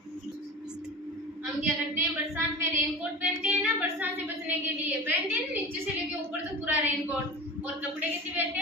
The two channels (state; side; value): normal; both; correlation 0.33